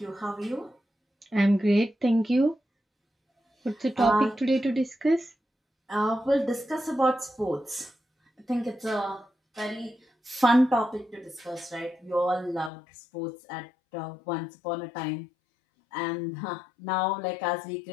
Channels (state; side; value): drops out; right; at 12.7 s